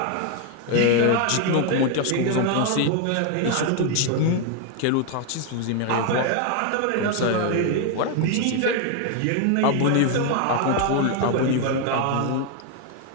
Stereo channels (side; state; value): both; different; correlation 0.01